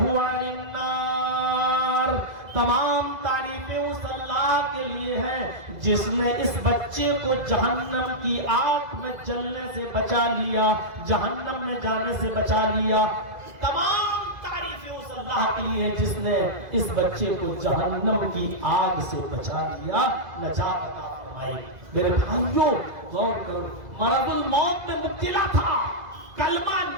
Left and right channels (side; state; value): left; late; 2.0 ms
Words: عن النار. تمام تعریفیں اس اللہ کے لیے ہیں جس نے اس بچے کو جہنم کی آگ میں جلنے سے بچا لیا, جہنم میں جانے سے بچا لیا. تمام تعریفیں اس اللہ کے لیے جس نے اس بچے کو جہنم کی آگ سے بچا لیا, نجات عطا فرمائی. میرے بھائیوں غور کرو, مرض الموت میں مبتلا تھا, کلمہ